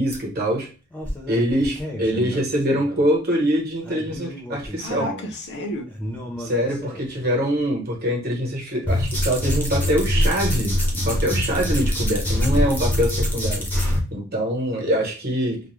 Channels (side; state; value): both; normal; correlation 0.60